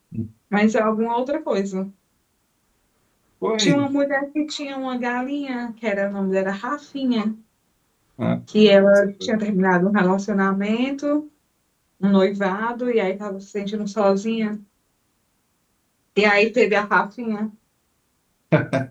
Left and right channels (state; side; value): identical; both; correlation 1.00